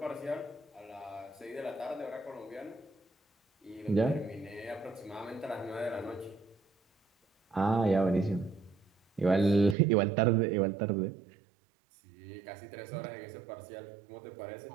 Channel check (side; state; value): left; drops out; at 9.8 s